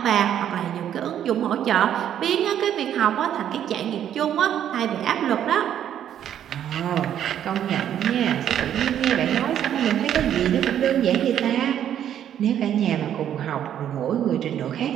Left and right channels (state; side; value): quieter; left; 10.2 dB